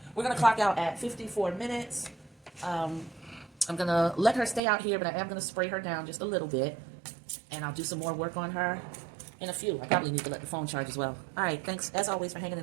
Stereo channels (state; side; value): drops out; left; at 4.6 s